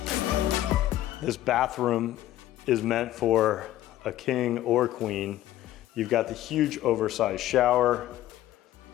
This bathroom is meant for a king or queen. You've got the huge oversized shower,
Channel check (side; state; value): right; quieter; 13.9 dB